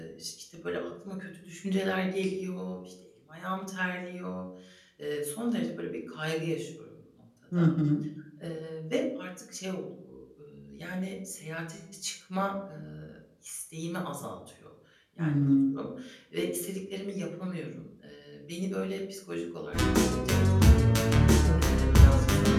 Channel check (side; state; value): both; identical; correlation 1.00